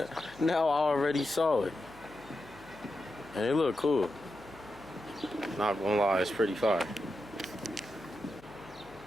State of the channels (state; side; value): noise; left; hum, 24 dB below the sound